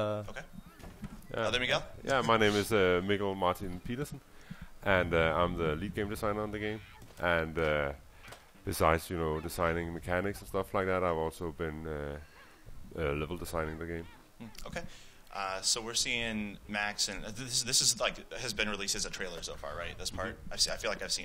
Other Miguel? Yeah, my name is Miguel Martin Petersen, and I'm the lead game designer on the game. And besides, designing mechanics and stuff like that, I've also been level designing the game. Okay. So we're seeing Max, and this is like has been released as a trailer so far, right? This part, I feel like I've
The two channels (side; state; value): both; identical; correlation 1.00